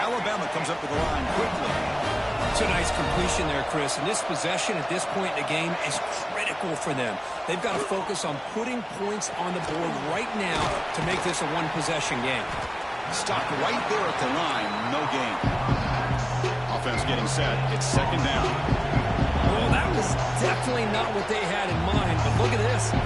Alabama comes up with the line quickly. It's a nice completion there, Chris. And this possession at this point in the game is critical for them. They've got to focus on putting points on the board right now to make this a one-possession game. Stopped right there at the line. No gain. Offense getting set. It's second down. Well, that was definitely not what they had in mind. But look at this.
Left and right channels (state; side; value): identical; both; correlation 1.00